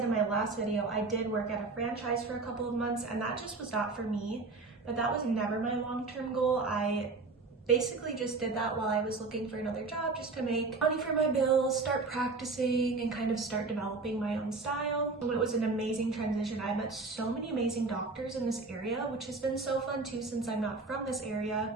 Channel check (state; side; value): quieter; left; 3.8 dB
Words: in my last video, I did work at a franchise for a couple of months, and that just was not for me, but that was never my long-term goal. I basically just did that while I was looking for another job, just to make money for my bills, start practicing, and kind of start developing my own style. It was an amazing transition. I met so many amazing doctors in this area, which has been so fun too since I'm not from this area.